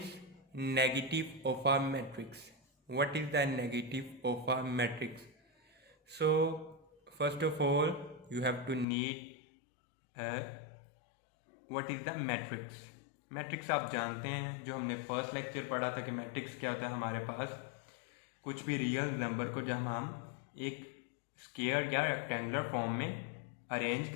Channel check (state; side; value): drops out; right; at 8.8 s